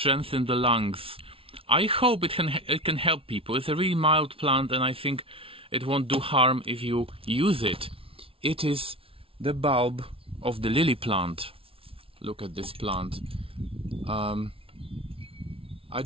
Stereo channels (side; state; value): left; late; 0.26 ms